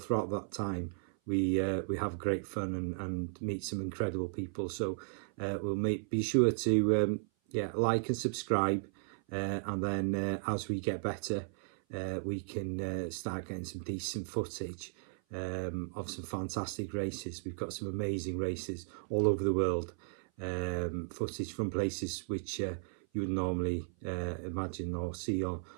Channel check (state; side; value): silent; left; 54 dB below the other